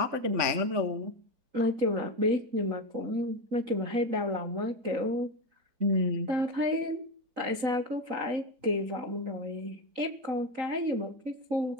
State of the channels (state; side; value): late; left; 3.9 ms